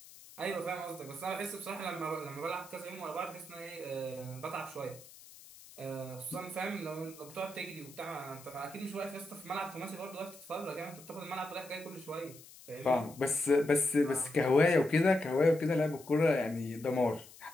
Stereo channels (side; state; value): left; noise; hiss, 19 dB below the sound